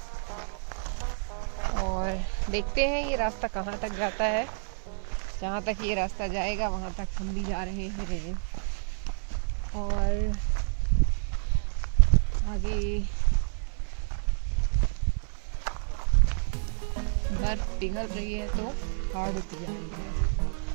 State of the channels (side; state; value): left; silent; 59 dB below the other